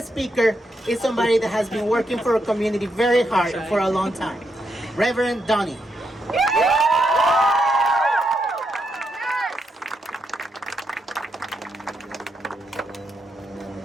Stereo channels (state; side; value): normal; both; correlation 0.81